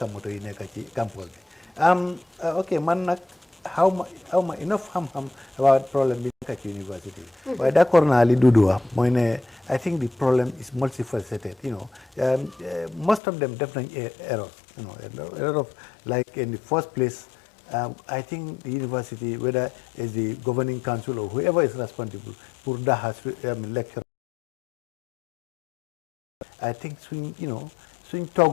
moto yi nekk ci campus bi ok man nag xaw ma enough xam-xam about problème bi nekk ci university bi waaye d'accord naa li Doudou wax mooy ne I think the problem is multifaceted most of them def nañ errors a lot of like in the first place I think the university, whether it's the governing council or whoever is responsible, for that has lecture. I think swing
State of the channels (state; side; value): drops out; right; at 13.2 s